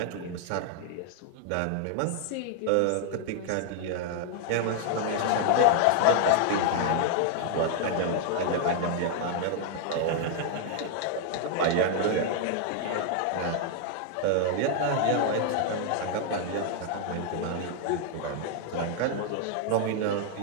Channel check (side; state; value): both; different; correlation 0.00